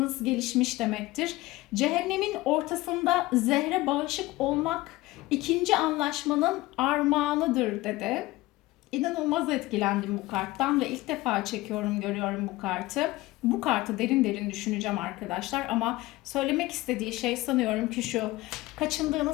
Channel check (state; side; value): quieter; right; 19.1 dB